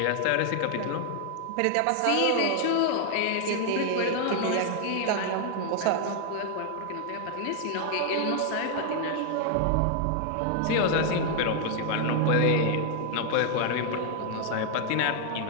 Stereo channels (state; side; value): different; both; correlation 0.00